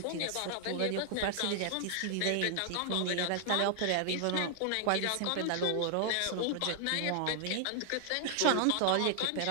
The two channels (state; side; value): different; both; correlation 0.00